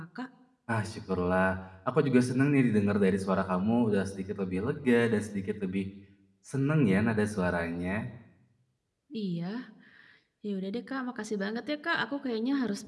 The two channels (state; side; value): identical; both; correlation 1.00